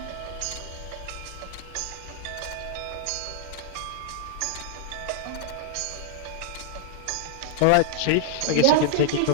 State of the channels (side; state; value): both; different; correlation -0.01